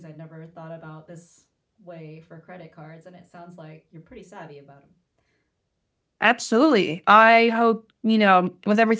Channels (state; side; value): identical; both; correlation 1.00